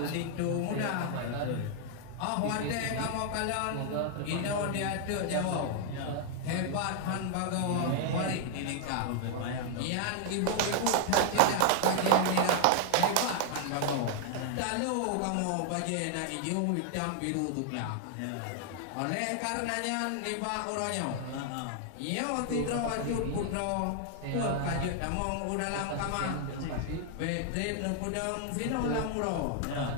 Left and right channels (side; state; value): both; different; correlation 0.00